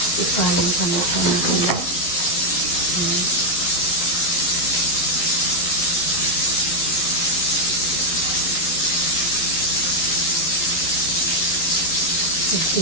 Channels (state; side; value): late; right; 12 ms